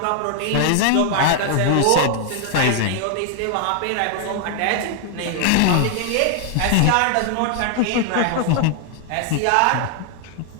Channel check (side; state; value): both; different; correlation 0.00